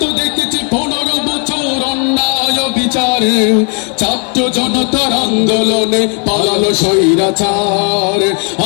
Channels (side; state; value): right; quieter; 37.5 dB